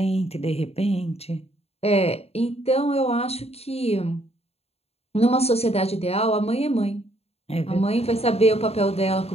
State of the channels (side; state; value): right; late; 0.30 ms